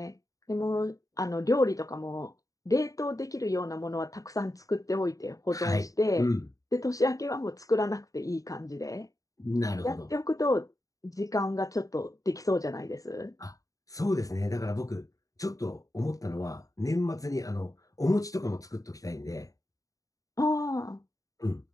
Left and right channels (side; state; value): right; late; 0.17 ms